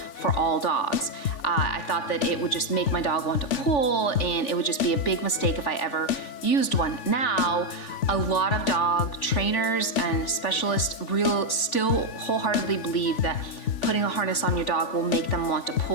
for all dogs. I thought that it would just make my dog want to pull, and it would just be a big mistake if I ever used one. Now, a lot of dog trainers and specialists still wholeheartedly believe that putting a harness on your dog will make them want to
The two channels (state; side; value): late; right; 3.5 ms